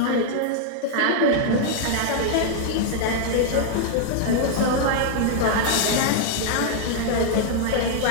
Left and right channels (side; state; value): both; different; correlation -0.01